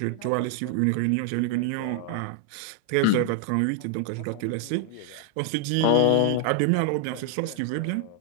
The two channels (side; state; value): both; different; correlation 0.00